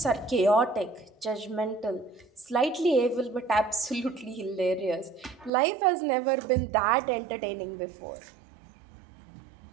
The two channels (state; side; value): drops out; left; at 5.5 s